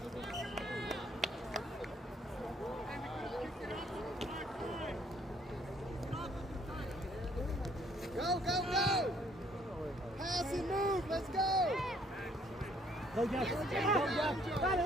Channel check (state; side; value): normal; both; correlation 0.63